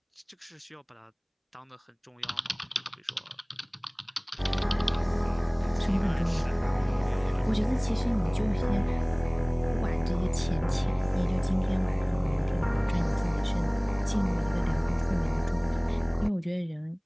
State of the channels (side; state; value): both; identical; correlation 1.00